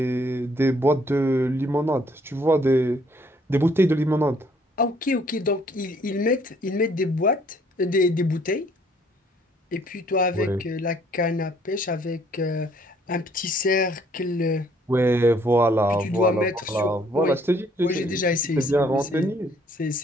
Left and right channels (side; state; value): both; normal; correlation 0.63